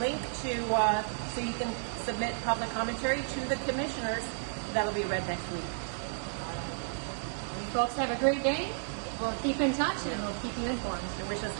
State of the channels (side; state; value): left; silent; digital silence